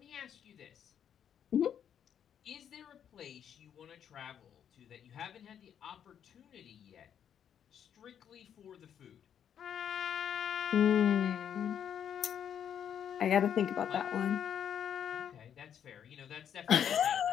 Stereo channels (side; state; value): right; quieter; 8.9 dB